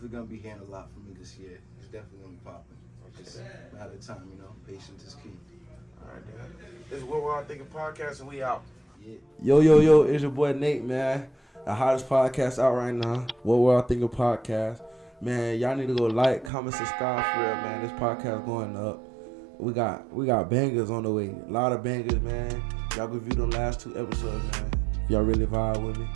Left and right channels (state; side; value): drops out; left; at 16.5 s